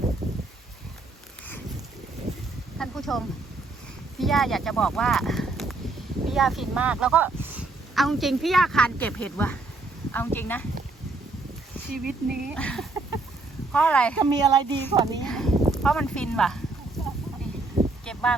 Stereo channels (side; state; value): left; quieter; 3.3 dB